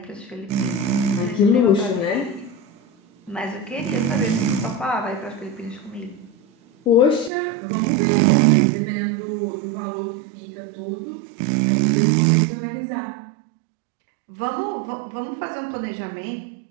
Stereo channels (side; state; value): left; drops out; at 7.3 s